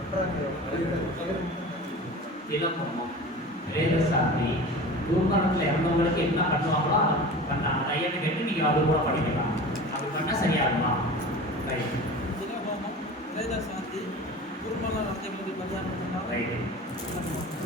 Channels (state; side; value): normal; both; correlation 0.36